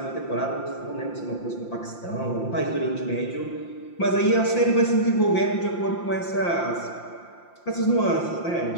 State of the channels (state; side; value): late; right; 5.8 ms